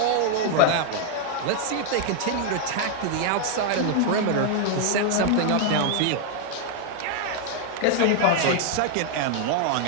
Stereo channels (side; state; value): both; different; correlation 0.00